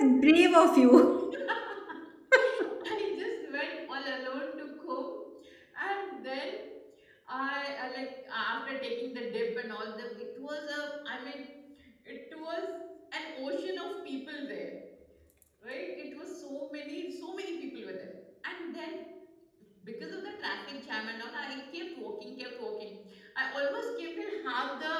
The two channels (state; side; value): identical; both; correlation 1.00